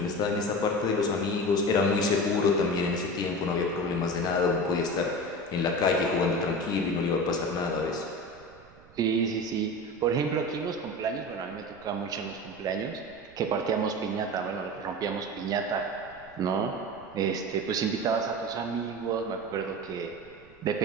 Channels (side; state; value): right; noise; rumble, 24 dB below the sound